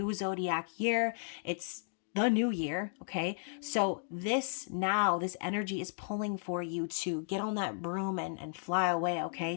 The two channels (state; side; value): silent; right; digital silence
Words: zodiac year. It's the new year, okay? So this energy is pulling for you to get on that broom and fly away, okay?